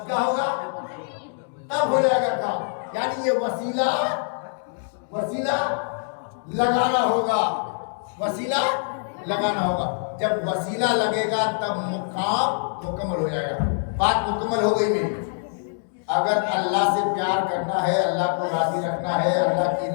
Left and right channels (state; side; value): silent; right; digital silence